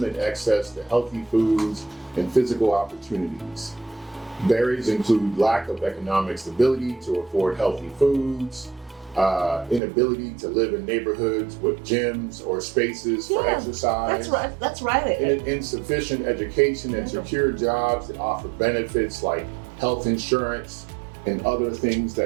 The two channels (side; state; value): left; drops out; at 9.8 s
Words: access to healthy foods and physical opportunities. Barriers include lack of economic stability to afford healthy foods, inability to live in neighborhoods with gyms or spaces for exercise. That's right. Insufficient education and secure jobs that offer benefits like health insurance and other things